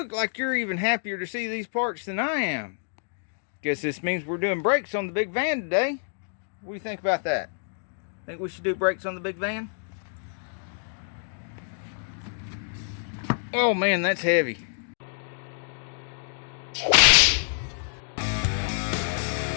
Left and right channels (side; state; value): right; silent; digital silence